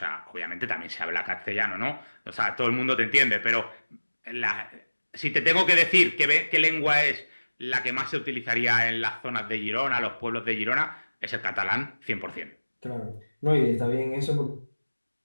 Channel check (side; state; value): both; inverted; correlation -1.00